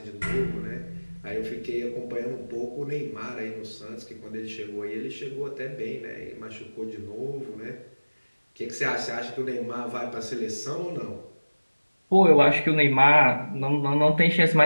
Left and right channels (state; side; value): inverted; both; correlation -1.00